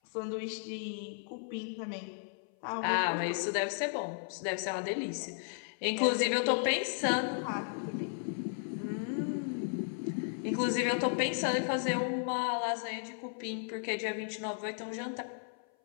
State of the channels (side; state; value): right; silent; 55 dB below the other